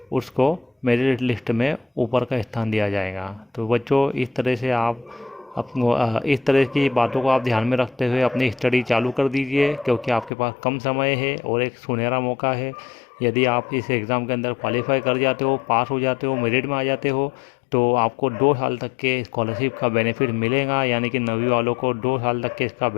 उसको मेरिट लिस्ट में ऊपर का स्थान दिया जाएगा। तो बच्चों, इस तरह से आप इस तरह की बातों को आप ध्यान में रखते हुए अपनी स्टडी चालू कर दीजिए, क्योंकि आपके पास कम समय है और एक सुनहरा मौका है। यदि आप इस एग्ज़ाम के अंदर क्वालिफाई कर जाते हो, पास हो जाते हो, मेरिट में आ जाते हो, तो आपको 2 साल तक के स्कॉलरशिप का बेनिफिट मिलेगा। यानी कि 9वीं वालों को 2 साल तक के इसका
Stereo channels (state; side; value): drops out; right; at 10.3 s